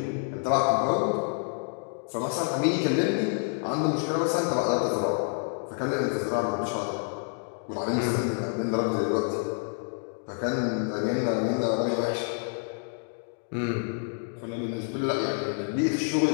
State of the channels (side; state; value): right; silent; 59 dB below the other